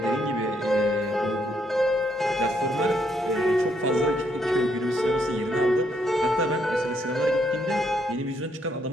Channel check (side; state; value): both; normal; correlation 0.73